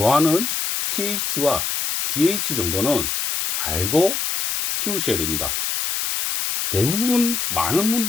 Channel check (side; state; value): left; noise; hiss, 1 dB below the sound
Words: pH와 GH 정도는 알고 키우셔야 됩니다. 대부분 많은